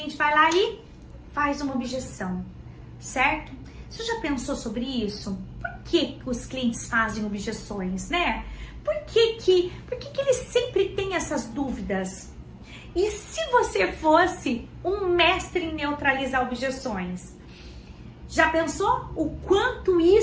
vai lá e faz uma objeção, certo? Você já pensou sobre isso? Por que os clientes fazem objeções, né? Por que eles sempre têm essas dúvidas? E se você fosse um mestre em neutralizar objeções? Já pensou o quanto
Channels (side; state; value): both; identical; correlation 1.00